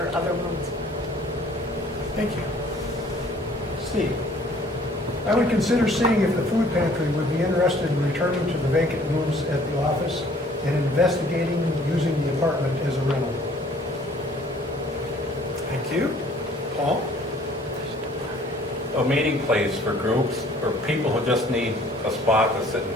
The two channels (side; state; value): both; normal; correlation 0.55